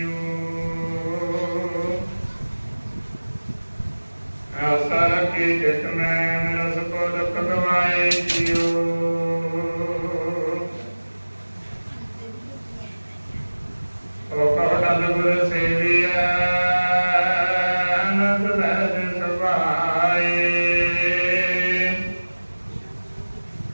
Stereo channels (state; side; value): inverted; both; correlation -1.00